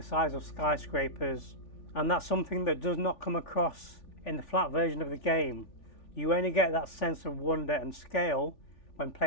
size of skyscrapers, and that's something that does not come across in the flat version of the game. You only get that sense of wonder and scale when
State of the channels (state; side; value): late; right; 3.4 ms